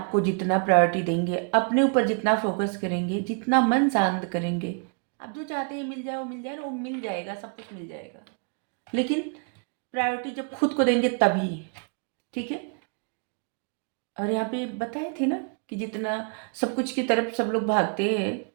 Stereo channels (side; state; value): left; quieter; 38.1 dB